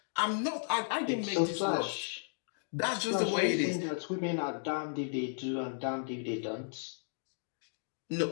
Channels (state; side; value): silent; right; digital silence